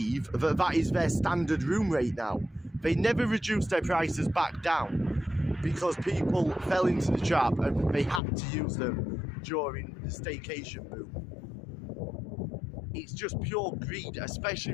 that that is their standard room rate now. They never reduced their prices back down because people fell into the trap and they had to use them during the staycation boom. It's just pure greed,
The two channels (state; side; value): drops out; right; at 8.2 s